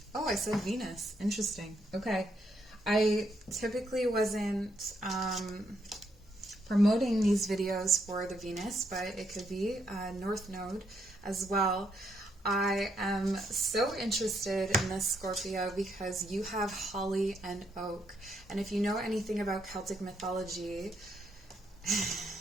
Oh, I said Venus. Interesting. Okay. I typically wasn't promoting these videos for the Venus, but it could be North Node as well. I am so interested in this Scorpio because you have holly and oak. And if you know anything about Celtic mythology,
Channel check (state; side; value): normal; both; correlation 0.76